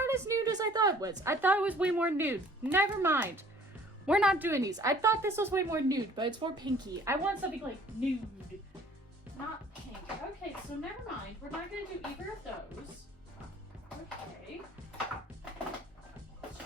as nude as I thought it was. I thought it was way more nude. Never mind. We're not doing these. I thought this was way more nude, but it's more pinky. I want something like nude, not pink. Okay, so never mind. We're not gonna do either of those. Okay. Let's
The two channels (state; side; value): normal; both; correlation 0.53